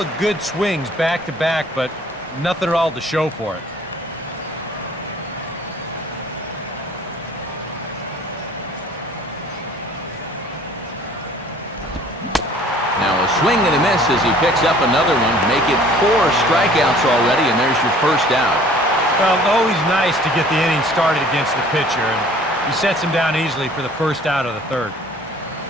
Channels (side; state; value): both; normal; correlation 0.52